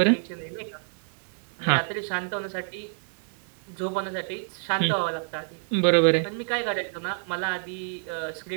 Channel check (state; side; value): silent; left; 60 dB below the other